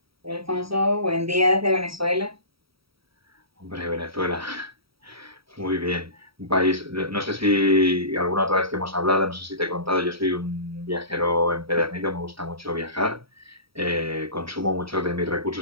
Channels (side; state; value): left; late; 0.75 ms